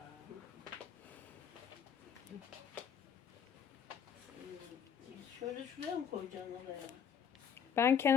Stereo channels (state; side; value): quieter; right; 7.8 dB